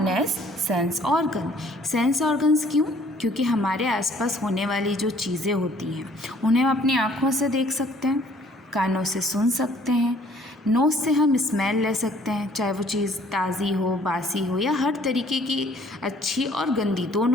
as sense organ. Sense organs क्यों? क्योंकि हमारे आसपास होने वाली जो चीज़ें होती हैं उन्हें हम अपनी आँखों से देख सकते हैं, कानों से सुन सकते हैं, नोज़ से हम स्मेल ले सकते हैं, चाहे वो चीज़ ताज़ी हो, बासी हो या हर तरीके की अच्छी और गंदी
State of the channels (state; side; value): normal; both; correlation 0.58